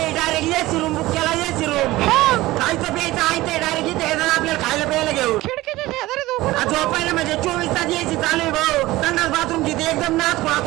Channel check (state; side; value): quieter; left; 18.1 dB